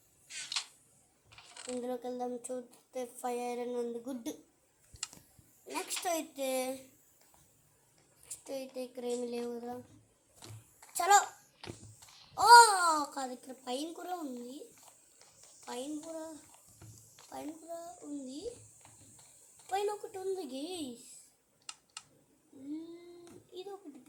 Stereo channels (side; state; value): both; identical; correlation 1.00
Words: ఇందులోకి వెళ్దాం. చూస్తే 5 ఐరన్ ఉంది, గుడ్. నెక్స్ట్ అయితే ఇక్కడ ఏమి లేవు కదా. చలో. కాదు, ఇక్కడ పైన కూడా ఉంది. పైన కూడా ఉంది. పైన ఒకటి ఉంది గైస్. ఇది ఒకటి